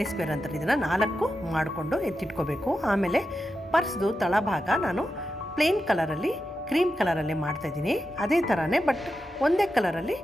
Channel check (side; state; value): both; normal; correlation 0.89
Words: ಸ್ಕ್ವೇರ್ ಅಂತಾರೆ, ಇದನ್ನು 4 ಮಾಡಿಕೊಂಡು ಎತ್ತಿಟ್ಕೋಬೇಕು. ಆಮೇಲೆ ಪರ್ಸ್ದು ತಳಭಾಗ ನಾನು ಪ್ಲೇನ್ ಕಲರಲ್ಲಿ ಕ್ರೀಮ್ ಕಲರಲ್ಲಿ ಮಾಡ್ತಾಯಿದ್ದೀನಿ. ಅದೇ ಥರನೇ ಬಟ್ ಒಂದೇ ಕಲರಲ್ಲಿ